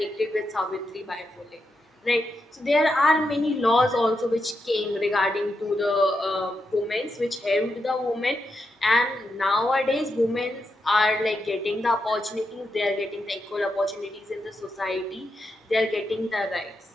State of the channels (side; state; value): both; normal; correlation 0.85